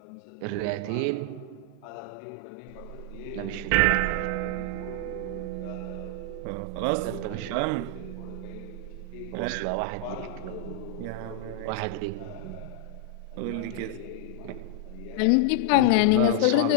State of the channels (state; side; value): different; both; correlation -0.01